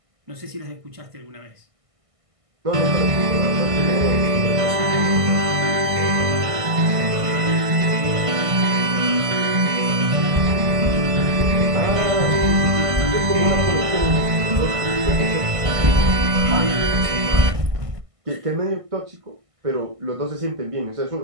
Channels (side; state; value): left; late; 1.5 ms